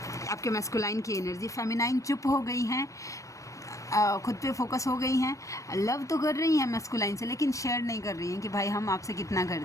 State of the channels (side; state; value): right; late; 0.15 ms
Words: आपके मैस्कुलाइन की एनर्जी, फेमिनाइन चुप हो गई हैं, खुद पे फोकस हो गई हैं। लव तो कर रही हैं मैस्कुलाइन से, लेकिन शेयर नहीं कर रही हैं कि भाई हम आपसे कितना